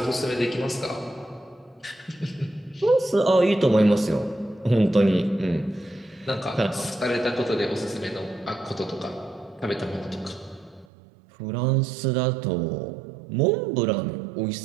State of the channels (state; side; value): drops out; left; at 10.9 s